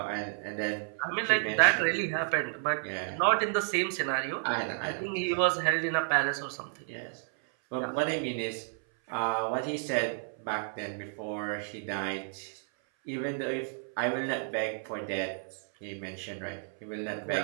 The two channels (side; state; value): left; silent; 57 dB below the other